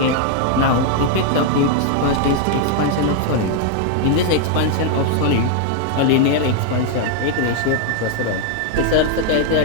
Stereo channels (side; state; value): both; different; correlation 0.00